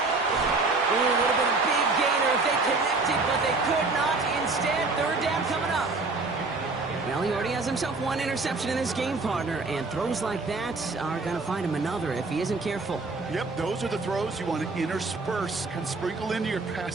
Ooh, would have been a big gainer if they connected, but they could not. Instead, 3rd down coming up. Well, he already has himself 1 interception in this game, partner, and throws like that are going to find him another if he isn't careful. Yep, those are the throws you want to intersperse and sprinkle into your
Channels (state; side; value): quieter; left; 3.7 dB